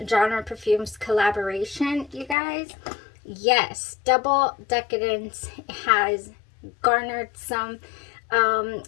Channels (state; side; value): drops out; right; at 2.4 s